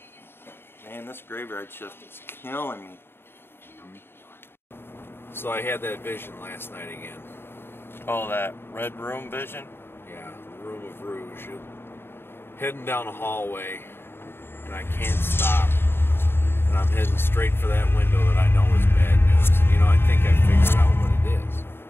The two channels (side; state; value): right; late; 0.11 ms